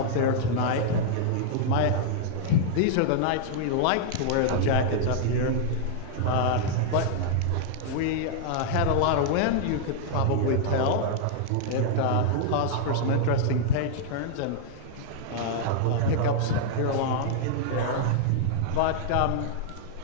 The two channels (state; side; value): different; both; correlation -0.01